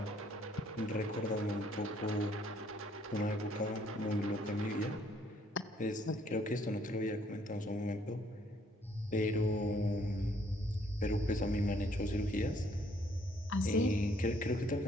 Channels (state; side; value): normal; both; correlation 0.65